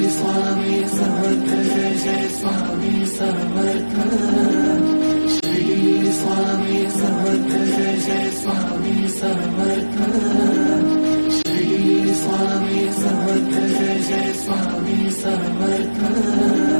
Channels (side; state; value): both; inverted; correlation -1.00